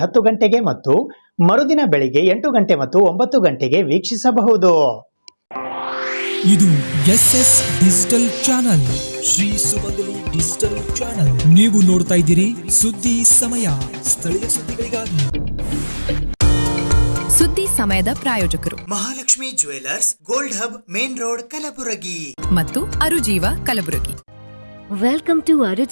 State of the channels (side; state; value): both; inverted; correlation -1.00